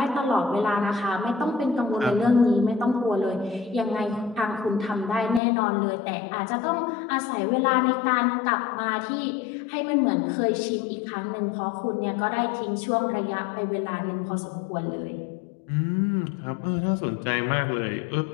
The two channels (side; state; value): right; drops out; at 5.4 s